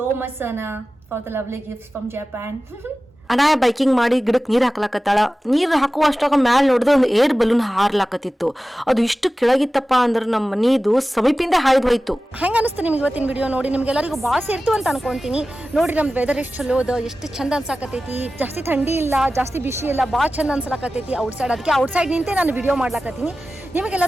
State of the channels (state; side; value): normal; both; correlation 0.95